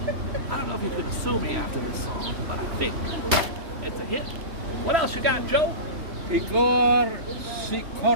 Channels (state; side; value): late; left; 3.0 ms